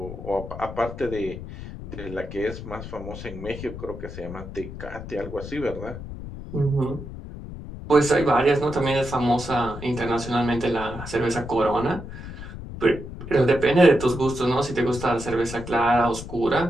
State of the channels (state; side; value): noise; left; rumble, 11 dB below the sound